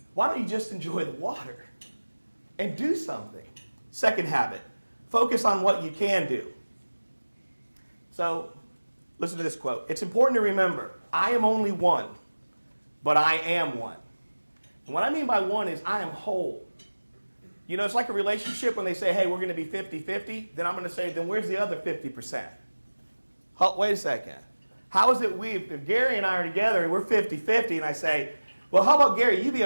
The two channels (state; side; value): inverted; both; correlation -1.00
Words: Why don't you just enjoy the water and do something? Second habit, focus on what you can do. So, listen to this quote. It's important to remember, I am only one, but I am one. And what I mean by one is I am whole. It's like a relationship when they say, hey, we're going to be 50-50. Then I'm going to say, then where's the other 50%? Wait a second. How is it if Gary and I are together and we're 50-50 and I say, well, how about Gary, you be